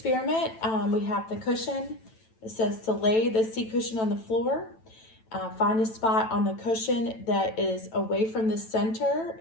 we have the cushion. It says to lay the seat cushion on the floor. Find a spot on the cushion that is away from the center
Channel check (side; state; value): right; late; 9.1 ms